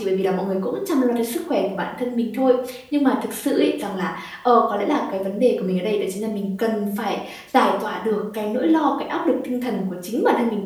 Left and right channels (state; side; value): identical; both; correlation 1.00